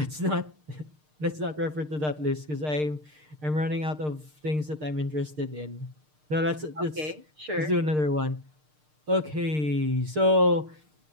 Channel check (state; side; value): late; left; 6.6 ms